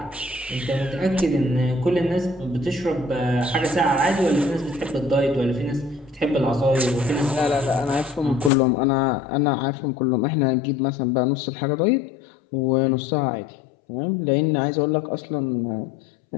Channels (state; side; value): drops out; right; at 8.5 s